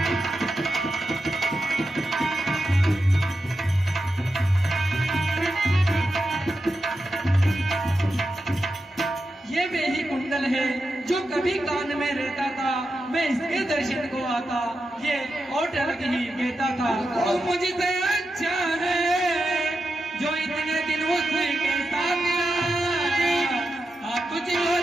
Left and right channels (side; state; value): both; normal; correlation 0.89